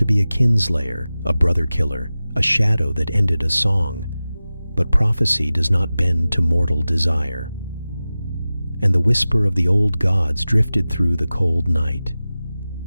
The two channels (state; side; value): inverted; both; correlation -0.96